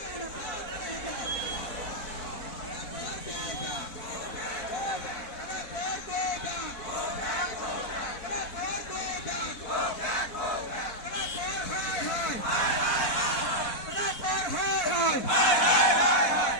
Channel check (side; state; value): right; late; 4.1 ms